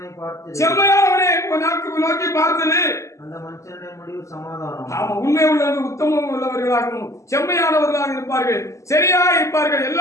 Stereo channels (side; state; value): right; late; 0.15 ms